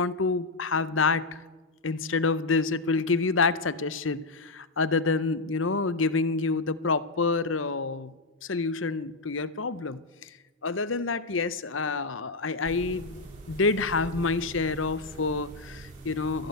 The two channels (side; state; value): right; quieter; 3.5 dB